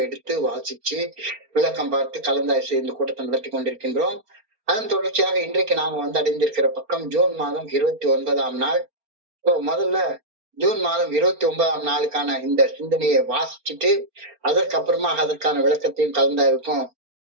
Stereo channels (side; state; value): left; late; 4.3 ms